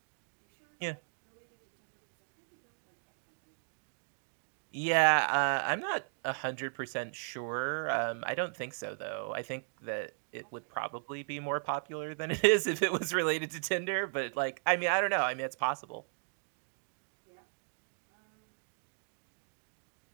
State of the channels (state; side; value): silent; left; digital silence